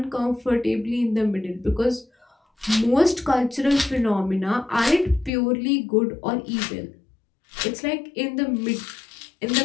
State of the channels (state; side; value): drops out; right; at 5.3 s